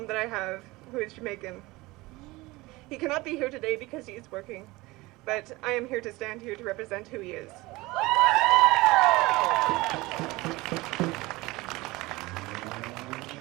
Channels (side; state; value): left; quieter; 21.2 dB